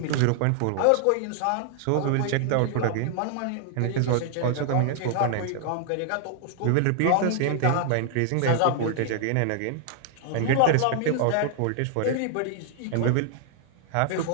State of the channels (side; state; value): both; different; correlation 0.00